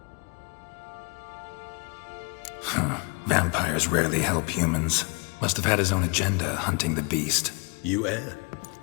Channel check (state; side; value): quieter; right; 32.2 dB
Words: Vampires rarely help humans. Must have had his own agenda, hunting the beast. You err.